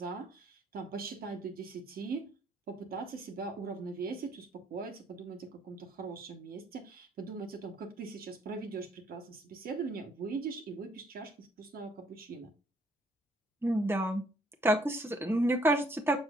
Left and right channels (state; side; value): normal; both; correlation 0.66